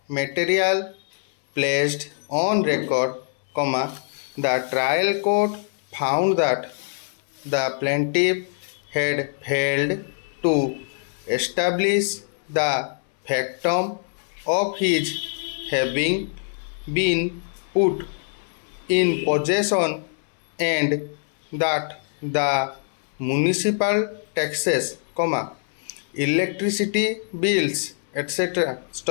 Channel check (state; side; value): silent; right; 59 dB below the other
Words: material placed on record, the trial court found that the plaintiff had failed to establish the factum of his having been put in possession and that the municipal taxes, electricity bills, etc.